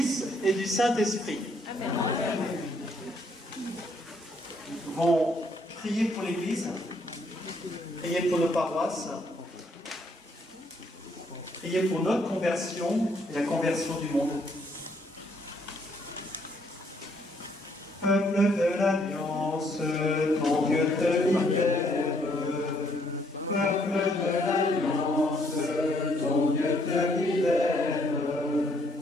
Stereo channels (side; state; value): both; normal; correlation 0.69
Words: et du Saint-Esprit. Amen. Nous allons prier pour l'Église, prier pour nos paroisses, prier pour notre conversion et la conversion du monde. Peuple de l'Alliance, ton Dieu te libère. Peuple de l'Alliance, ton Dieu te libère.